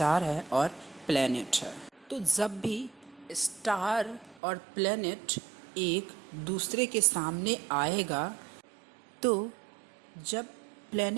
है और प्लैनेट है। तो जब भी स्टार और प्लैनेट एक दूसरे के सामने आएगा, तो जब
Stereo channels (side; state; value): left; drops out; at 4.4 s